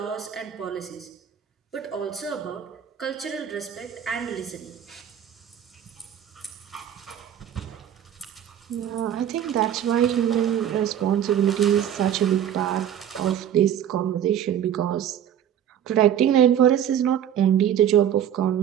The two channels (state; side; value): quieter; left; 9.9 dB